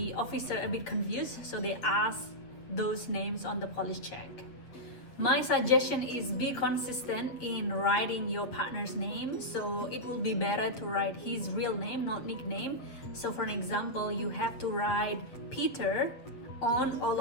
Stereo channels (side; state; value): right; late; 7.7 ms